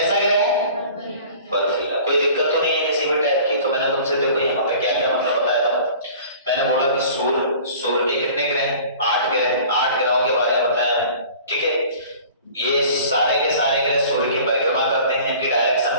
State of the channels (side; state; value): both; inverted; correlation -0.45